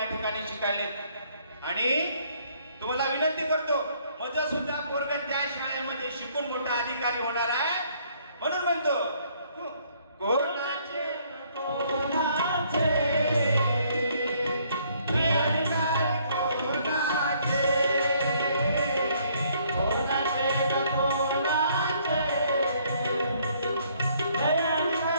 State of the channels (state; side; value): inverted; both; correlation -0.65